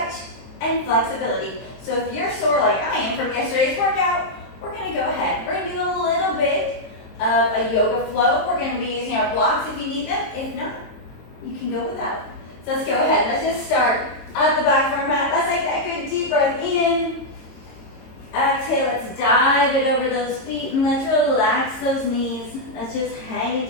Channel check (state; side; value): late; right; 22 ms